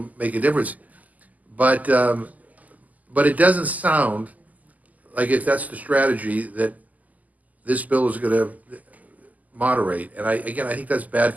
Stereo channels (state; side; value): late; left; 0.078 ms